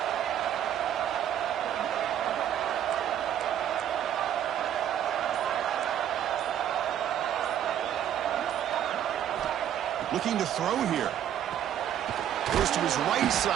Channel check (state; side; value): quieter; left; 10.4 dB